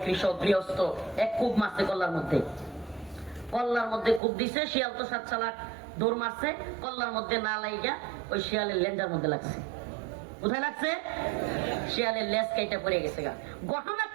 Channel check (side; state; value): left; drops out; at 4.2 s